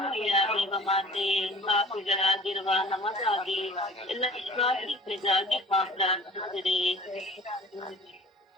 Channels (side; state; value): both; normal; correlation 0.46